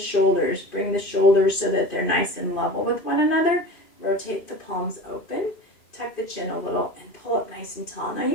Bring the shoulders so that they're nice and level with one another. Rotate the palms open. Tuck the chin a little and pull up nice and tall. Now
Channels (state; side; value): late; right; 2.5 ms